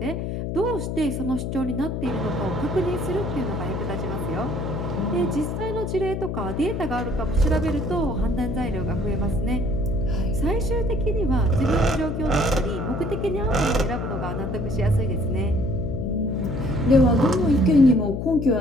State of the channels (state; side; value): noise; left; hum, 3 dB below the sound